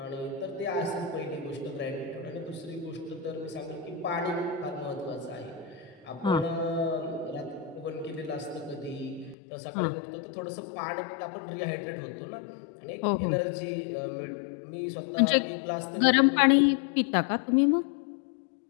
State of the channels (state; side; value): drops out; right; at 9.3 s